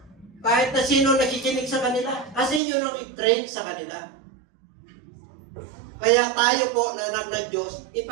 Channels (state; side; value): drops out; left; at 2.6 s